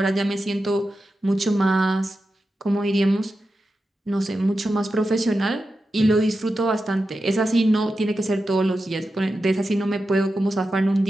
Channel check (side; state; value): both; normal; correlation 0.91